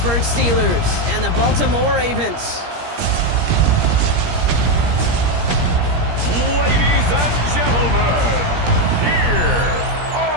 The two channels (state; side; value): late; left; 17 ms